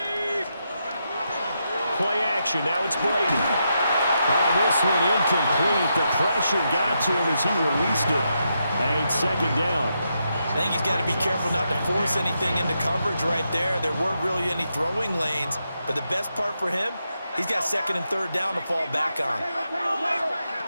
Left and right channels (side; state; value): both; inverted; correlation -0.83